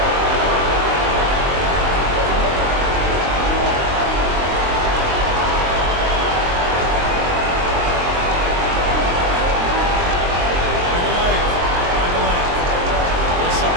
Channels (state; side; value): late; left; 23 ms